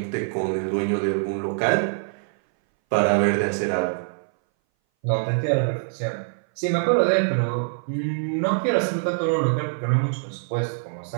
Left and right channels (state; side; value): silent; left; 60 dB below the other